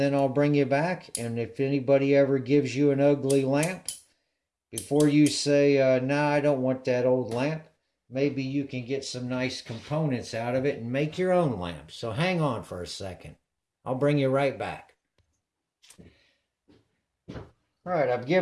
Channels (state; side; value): identical; both; correlation 1.00